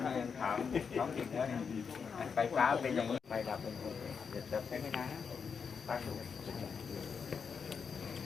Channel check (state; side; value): quieter; right; 6.1 dB